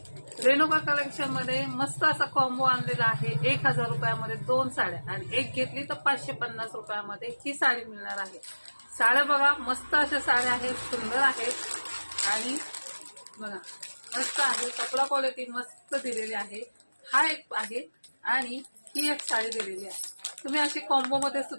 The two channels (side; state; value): both; inverted; correlation -1.00